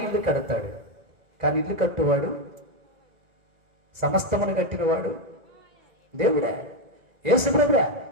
ఇల్లు కడతాడు, కానీ ఇల్లు కట్టువాడు, సమస్తమును కట్టినవాడు దేవుడే, యేసు ప్రభువే.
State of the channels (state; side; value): late; left; 2.0 ms